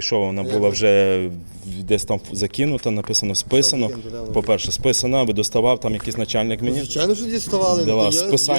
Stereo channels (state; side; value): inverted; both; correlation -1.00